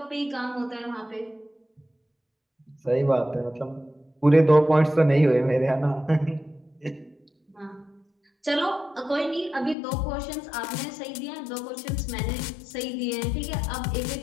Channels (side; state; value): right; drops out; at 9.8 s